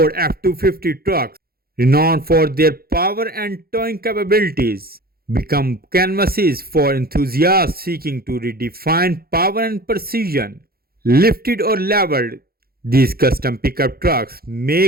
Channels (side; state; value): left; late; 0.44 ms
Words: F250 trucks, renowned for their power and towing capabilities, become canvases for enthusiasts seeking to redefine power and precision. Lifted or leveled, these custom pickup trucks